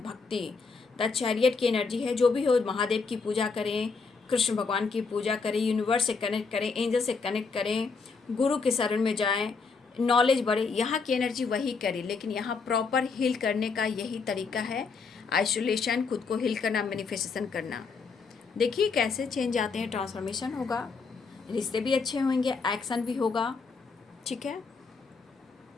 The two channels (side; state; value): right; quieter; 4.8 dB